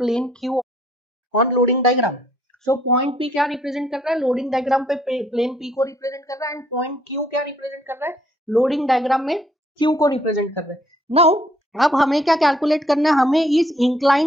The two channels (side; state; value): both; normal; correlation 0.66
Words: Q on loading diagram. So point P क्या represent कर रहा है, loading diagram पे plane P को represent कर रहा है, and point Q क्या represent कर रहा है, loading diagram में Q को represent कर रहा है। Now अब हमें क्या कैलकुलेट करना है, हमें इस